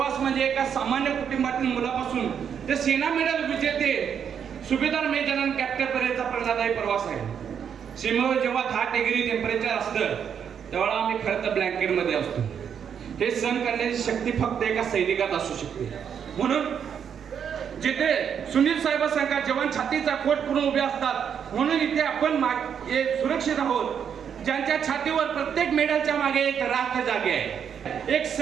म्हणजे एका सामान्य कुटुंबातील मुलापासून ते सेना मेडल विजेते सुभेदार मेजर कॅप्टन पर्यंतचा प्रेरणादायी प्रवास आहे. सीमेवर जेव्हा 10 डिग्री टेम्परेचर असतं तेव्हा आम्ही खरं तर ब्लँकेटमध्ये असतो. हे सहन करण्याची शक्ती फक्त एका सैनिकात असू शकते. म्हणून जिथे सुनील साहेबांसारखा जवान छातीचा कोट करून उभे असतात, म्हणून इथे आपण सुरक्षित आहोत. ज्यांच्या छातीवर प्रत्येक मेडलच्या मागे एक राख जागे आहे. एक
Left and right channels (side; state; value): left; quieter; 7.8 dB